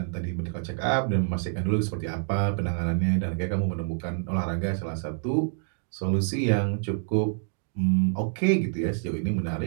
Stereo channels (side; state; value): left; silent; digital silence